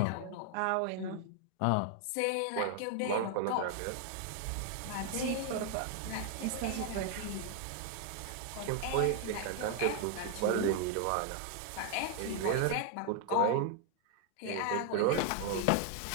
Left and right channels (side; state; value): both; different; correlation 0.00